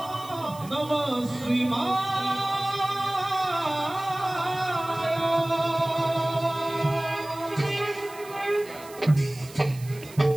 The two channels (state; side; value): noise; right; hiss, 19 dB below the sound